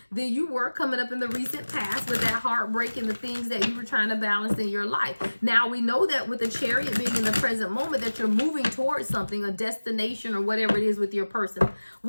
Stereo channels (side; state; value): both; inverted; correlation -1.00